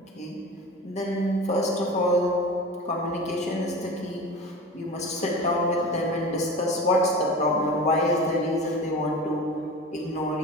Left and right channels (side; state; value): both; normal; correlation 0.33